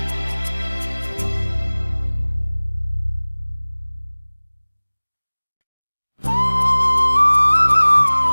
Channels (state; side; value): inverted; both; correlation -1.00